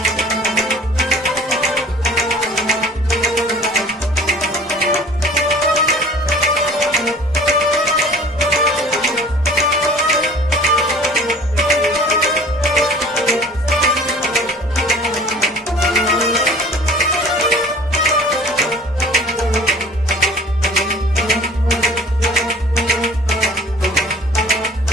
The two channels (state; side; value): normal; both; correlation 0.47